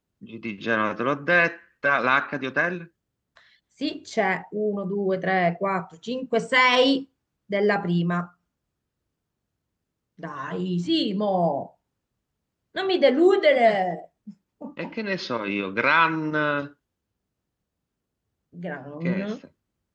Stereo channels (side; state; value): both; identical; correlation 1.00